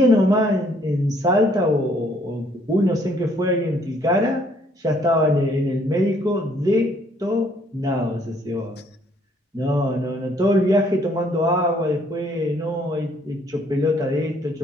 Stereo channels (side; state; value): both; normal; correlation 0.65